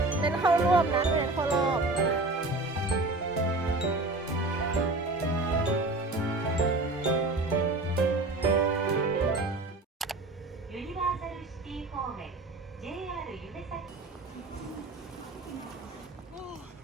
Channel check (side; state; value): left; quieter; 3.0 dB